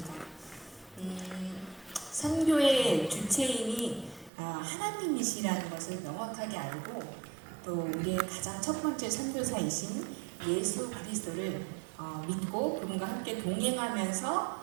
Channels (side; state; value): left; drops out; at 4.3 s